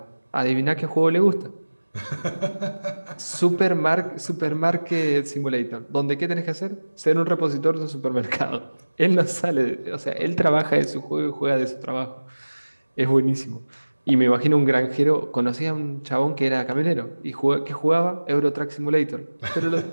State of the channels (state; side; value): inverted; both; correlation -1.00